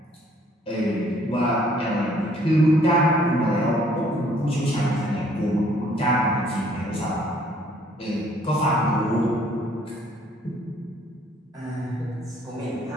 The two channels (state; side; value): normal; both; correlation 0.62